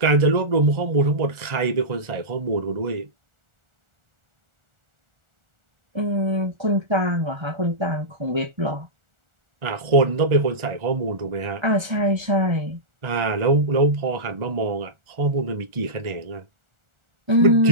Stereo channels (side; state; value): left; late; 1.4 ms